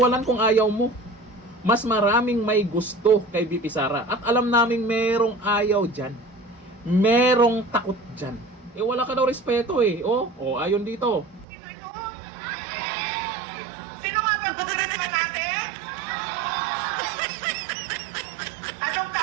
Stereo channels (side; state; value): left; drops out; at 11.5 s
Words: kung ayaw mo. Mas maraming may gusto kay VP Sara. At alam naming merong ayaw dyan. Merong takot dyan. Eh wala ka daw respeto eh. Oh, ayon dito. Sino nga ba congressman natin? Anong